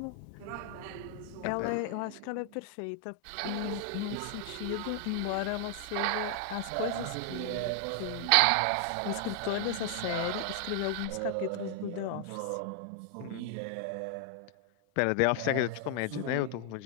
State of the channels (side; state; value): both; different; correlation 0.00